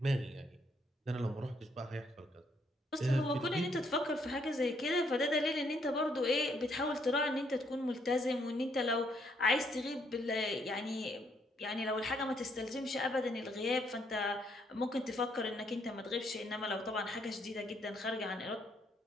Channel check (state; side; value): normal; both; correlation 0.71